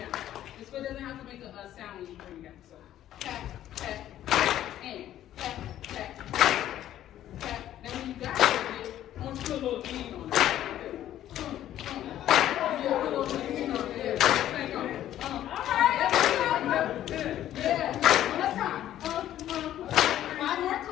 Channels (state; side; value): quieter; right; 12.2 dB